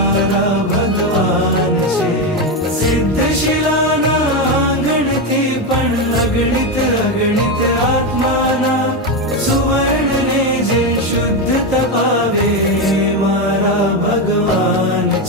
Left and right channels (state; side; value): normal; both; correlation 0.11